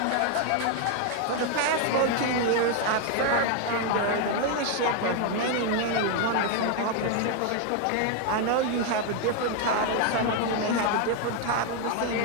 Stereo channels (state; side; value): different; both; correlation 0.01